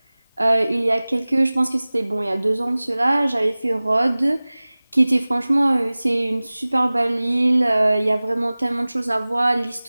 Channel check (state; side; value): inverted; both; correlation -0.99